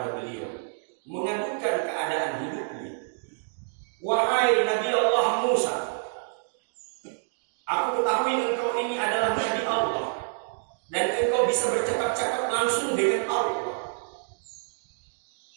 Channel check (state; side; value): silent; left; digital silence